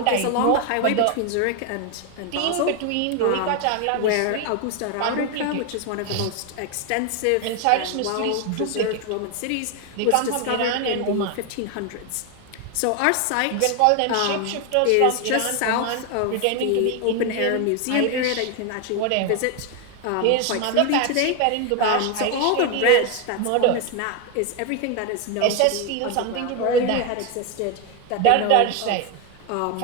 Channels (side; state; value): both; different; correlation 0.01